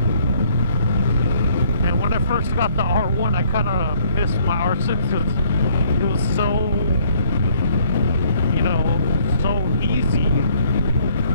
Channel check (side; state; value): both; inverted; correlation -0.62